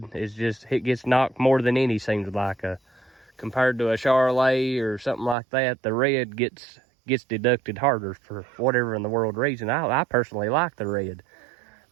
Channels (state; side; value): drops out; left; at 5.4 s